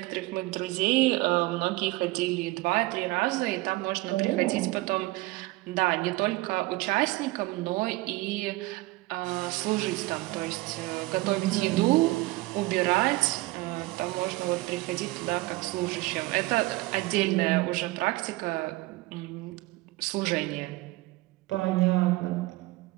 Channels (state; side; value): quieter; left; 20.4 dB